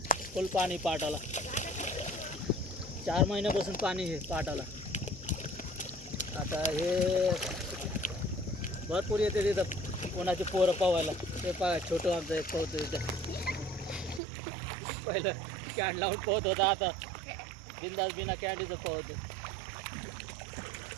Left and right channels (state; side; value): drops out; left; at 14.2 s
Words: फुल पाणी पाटाला. 4 महिन्यापासून पाणी हे पाटाला. आता हे भरपूर येते तिथं कोणाचे पोरं पोहायला. ते छोटं आमचं एक पोहतो तिथं. पहिलं कॅन लावून पोहत होता, आता बिंदास बिना कॅन्डीचं पोहतो.